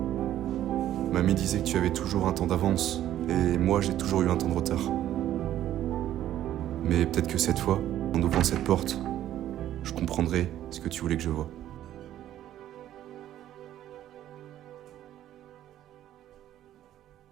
Mamie disait que tu avais toujours un temps d'avance, et moi j'ai toujours eu un temps de retard. Mais peut-être que cette fois, en ouvrant cette porte, je comprendrai ce que tu voulais que je voie.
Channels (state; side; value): quieter; left; 12.3 dB